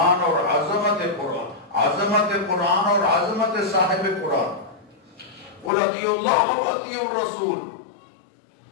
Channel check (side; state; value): right; drops out; at 5.7 s